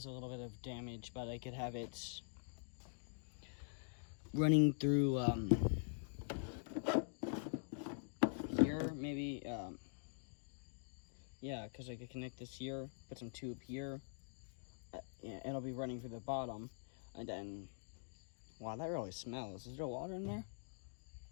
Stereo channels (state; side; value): silent; right; digital silence